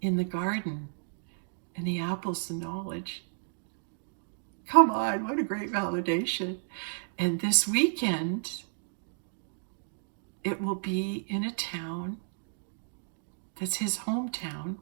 In the garden. And the apple's the knowledge. Come on, what a great validation. And this weekend, it will be in a town that's his hometown,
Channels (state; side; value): silent; left; digital silence